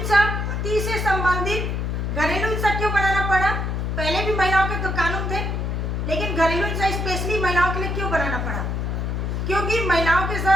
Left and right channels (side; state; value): left; noise; hum, 1 dB below the sound